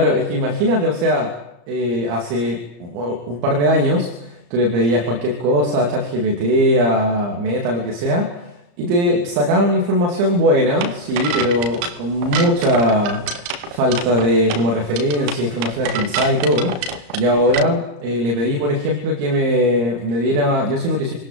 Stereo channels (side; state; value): left; late; 35 ms